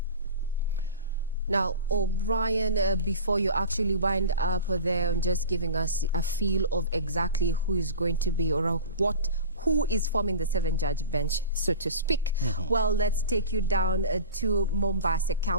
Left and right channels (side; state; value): both; inverted; correlation -0.33